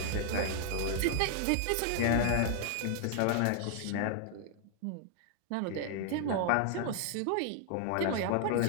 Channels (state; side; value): different; both; correlation 0.00